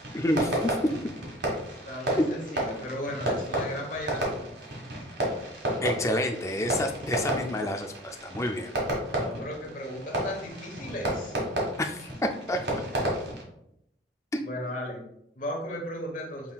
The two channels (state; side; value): normal; both; correlation 0.38